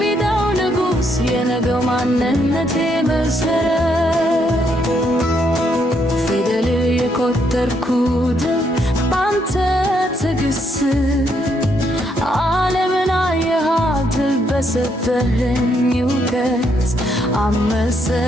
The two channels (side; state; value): both; normal; correlation 0.74